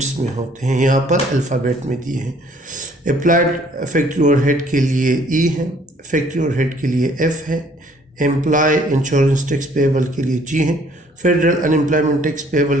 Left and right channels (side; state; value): both; normal; correlation 0.60